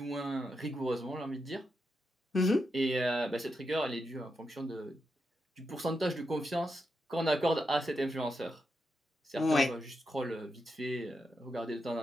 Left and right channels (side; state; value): both; normal; correlation 0.85